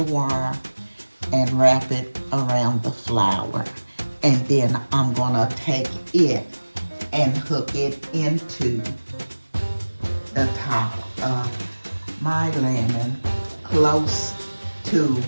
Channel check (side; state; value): both; inverted; correlation -1.00